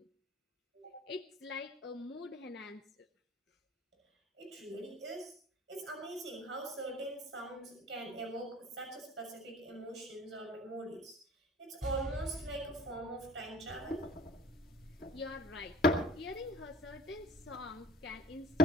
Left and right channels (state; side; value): normal; both; correlation 0.47